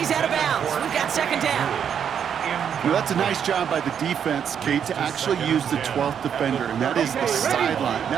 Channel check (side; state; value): left; quieter; 8.1 dB